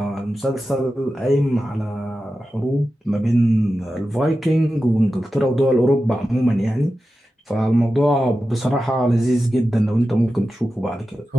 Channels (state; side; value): normal; both; correlation 0.92